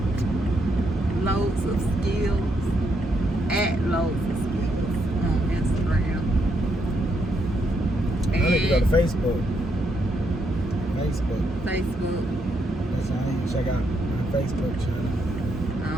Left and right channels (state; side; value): normal; both; correlation 0.77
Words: Loads of Skills at Loads of Skills on Instagram. I need to go to Facebook. Facebook. That's how I need to check out my Facebook channel.